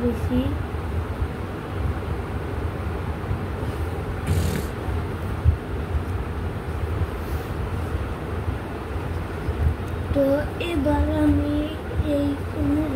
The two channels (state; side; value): identical; both; correlation 1.00